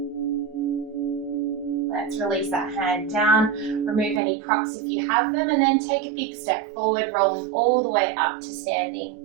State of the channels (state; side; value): drops out; left; at 4.2 s